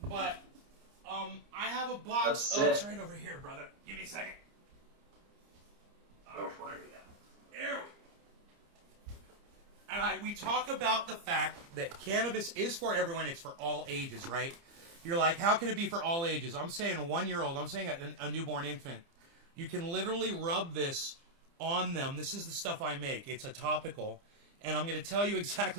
But I have a box. Oh, it's right over here, brother. Give me a second. Go for it. There and we talk about the fact that cannabis is for everyone. It's for all ages, right? You're like, how can it be for all ages? I'm saying a 1-year-old. I'm saying a newborn infant. You can literally rub this on them. This is the stuff I make. It's a topical. And I'm going to tell you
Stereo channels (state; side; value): late; left; 30 ms